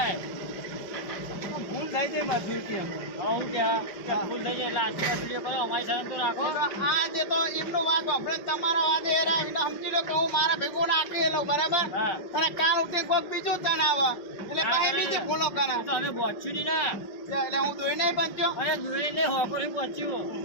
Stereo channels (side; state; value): right; late; 5.5 ms